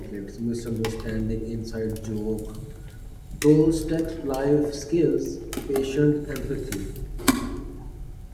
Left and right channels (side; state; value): both; identical; correlation 1.00